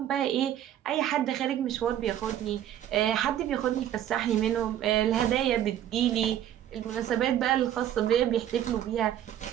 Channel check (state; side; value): quieter; left; 11.2 dB